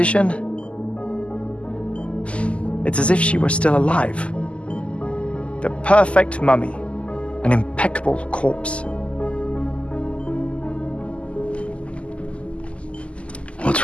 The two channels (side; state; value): right; late; 0.057 ms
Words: It's as if she were still alive. The perfect mummy. An impeccable corpse. What's